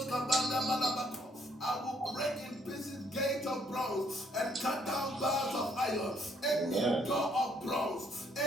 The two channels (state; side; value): normal; both; correlation 0.67